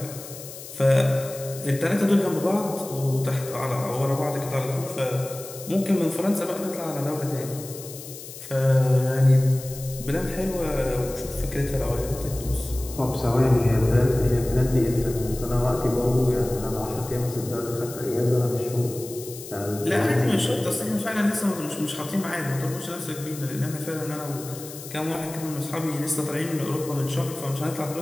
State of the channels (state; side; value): noise; left; hiss, 13 dB below the sound